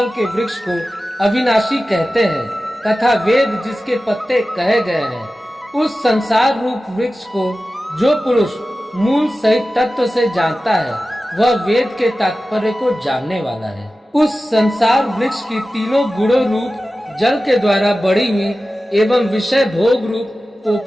के वृक्ष को अविनाशी कहते हैं तथा वेद जिसके पत्ते कहे गए हैं, उस संसार रूप वृक्ष को जो पुरुष मूल सहित तत्व से जानता है वह वेद के तात्पर्य को जानने वाला है। उस संसार वृक्ष की तीनों गुणों रूप जल के द्वारा बढ़ी हुई एवं विषय भोग रूप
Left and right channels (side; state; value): both; normal; correlation 0.95